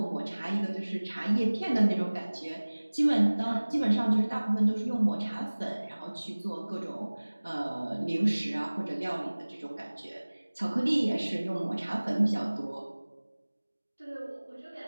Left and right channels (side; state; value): both; inverted; correlation -1.00